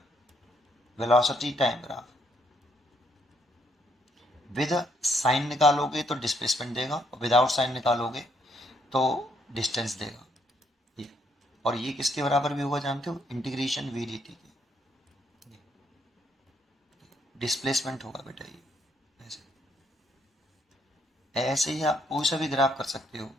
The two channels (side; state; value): both; normal; correlation 0.71